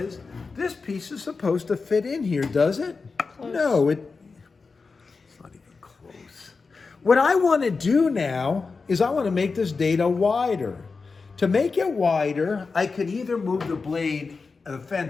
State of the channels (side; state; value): right; quieter; 4.5 dB